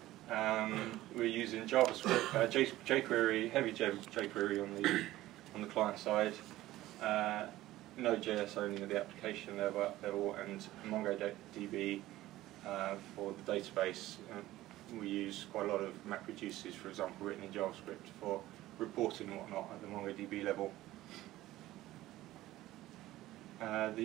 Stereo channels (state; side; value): quieter; left; 15.9 dB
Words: We're using JavaScript, jQuery, heavy jQuery on the client side, Node.js only at the application level, and MongoDB for the database. We use quite a lot of MapReduces, for example, written in JavaScript for reporting and whatnot at the MongoDB level.